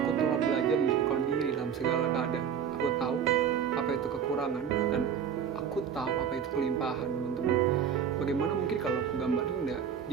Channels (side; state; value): left; quieter; 7.9 dB